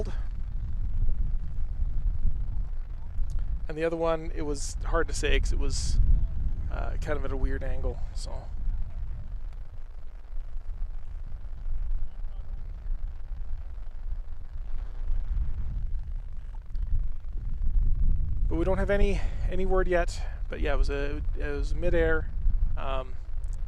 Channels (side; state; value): both; identical; correlation 1.00